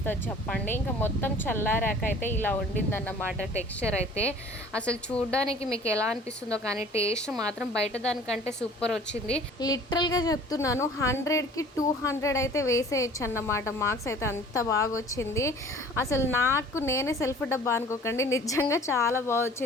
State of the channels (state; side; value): normal; both; correlation 0.49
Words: చెప్పండి. ఇంకా మొత్తం చల్లారాక అయితే ఇలా ఉండిందన్నమాట టెక్స్చర్ అయితే. అసలు చూడడానికి మీకు ఎలా అనిపిస్తుందో కానీ టేస్ట్ మాత్రం బయట దానికంటే సూపర్ వచ్చింది. లిటరల్గా చెప్తున్నాను, 100కి 200 అయితే వేసేయచ్చు అన్నమాట. మార్క్స్ అయితే అంత బాగా వచ్చింది. అసలు నాకు నేనే సెల్ఫ్ డబ్బా అనుకోకండి, నిజంగా చాలా బాగా